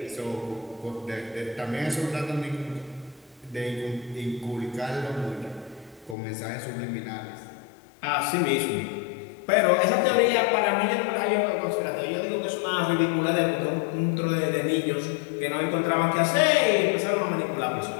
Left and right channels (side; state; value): right; drops out; at 6.2 s